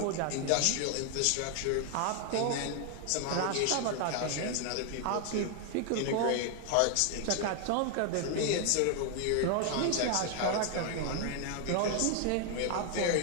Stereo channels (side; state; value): both; different; correlation 0.00